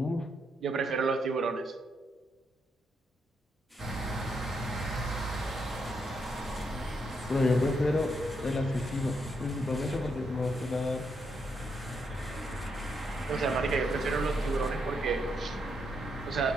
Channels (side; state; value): both; normal; correlation 0.79